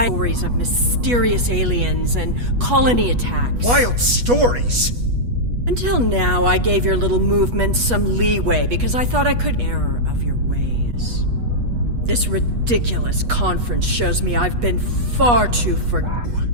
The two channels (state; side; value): late; left; 8.3 ms